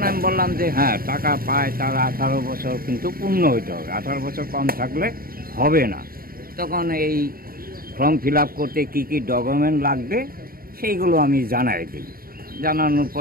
আমি বললাম যে হ্যাঁ, টাকা পায়, তার 18 বছর কিন্তু পূর্ণ হইতে হবে, 18 বছর কম থাকলে হবে না। তখন এই ফর্ম ফিল আপ করতে কী কী ডকুমেন্ট লাগবে সেইগুলো আমি জানাই দিই। জানানোর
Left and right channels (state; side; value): late; left; 0.43 ms